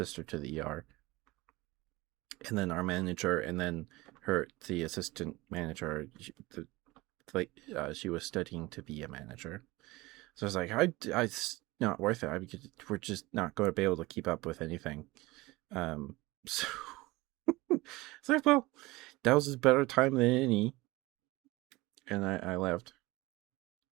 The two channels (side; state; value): left; quieter; 21.1 dB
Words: to the ER, and then our manager, and then the assistant manager. She was studying to be a manager, so I was like, it's not worth it. We're just not going to be able to keep up with anything. So it's like, well, that was a better time than any, and I left.